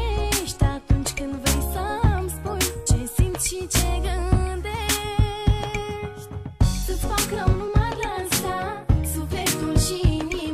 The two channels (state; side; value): identical; both; correlation 1.00